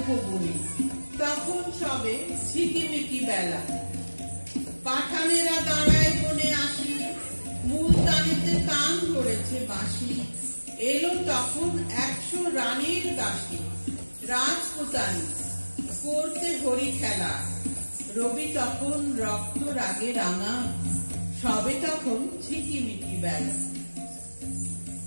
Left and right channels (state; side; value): inverted; both; correlation -1.00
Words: তখন সবে ঝিকিমিকি বেলা। পাঠানেরা দাঁড়ায় বনে আসি, মুলতানিতে তান করেছে বাঁশি। এলো তখন 100 রানীর দাসী, রাজপুতানি করতে হরি খেলা। রবি তখন রক্ত রাগে রাঙা, সবে তখন ঝিকিমিকি বেলা।